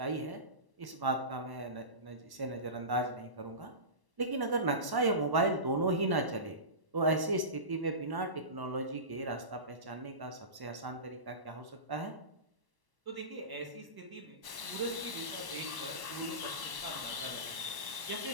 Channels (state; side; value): late; left; 1.1 ms